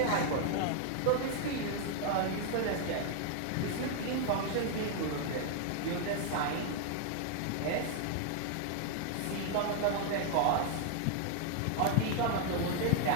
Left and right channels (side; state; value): both; different; correlation 0.00